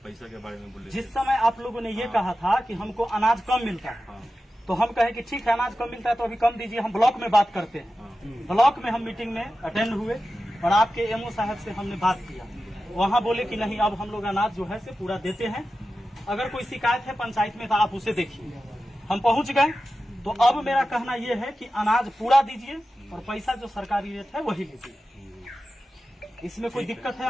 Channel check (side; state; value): both; normal; correlation 0.93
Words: पैसा के बारे में बोले जिस समय आप लोगों ने ये कहा था कि हमको अनाज कम मिलता है, हाँ तो हम कहे कि ठीक है अनाज कम मिलता है तो अभी कम दीजिए, हम ब्लॉक में बात करते हैं। ब्लॉक में हम मीटिंग में अटेंड हुए और आपके एमओ साहब से हमने बात किया। वहाँ बोले कि नहीं, अब हम लोग अनाज जो है से पूरा देते हैं। अगर कोई शिकायत है पंचायत में तो आप उसे देखिए। हम पहुँच गए, तो अब मेरा कहना यह है कि अनाज पूरा दीजिए और पैसा जो सरकारी रेट है वही लीजिए। इसमें कोई दिक्कत है